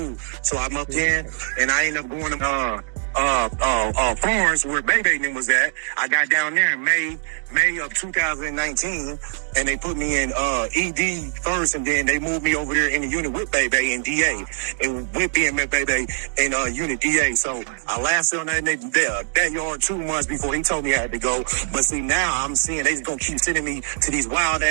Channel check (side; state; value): left; silent; digital silence